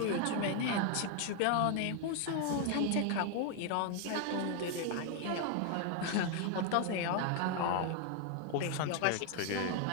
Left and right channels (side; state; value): both; different; correlation 0.00